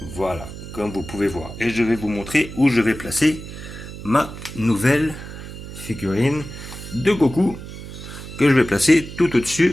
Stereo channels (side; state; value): right; noise; hum, 12 dB below the sound